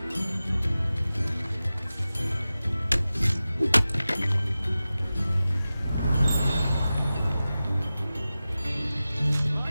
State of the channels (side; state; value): both; inverted; correlation -0.95